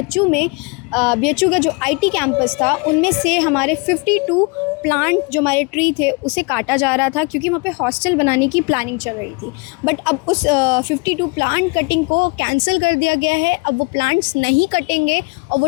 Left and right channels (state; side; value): quieter; right; 30.2 dB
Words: में बीएचयू का जो आईटी कैंपस था, उनमें से हमारे 52 प्लांट जो हमारे ट्री थे उसे काटा जा रहा था, क्योंकि वहाँ पे हॉस्टल बनाने की प्लानिंग चल रही थी। बट अब उस 52 प्लांट कटिंग को कैंसिल कर दिया गया है। अब वो प्लांट्स नहीं कटेंगे और वो